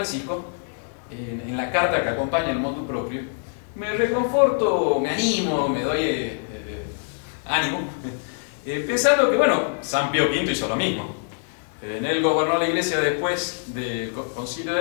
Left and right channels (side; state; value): right; silent; 62 dB below the other